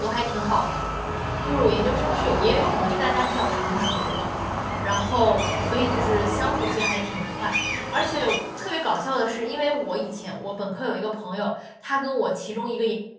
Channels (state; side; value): identical; both; correlation 1.00